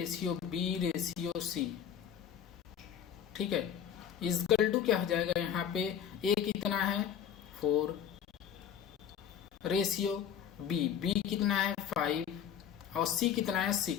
ठीक है, इक्वल टू क्या हो जाएगा, यहाँ पे a कितना है 4 रेशियो b कितना है 5 और c कितना है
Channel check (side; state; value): right; quieter; 8.9 dB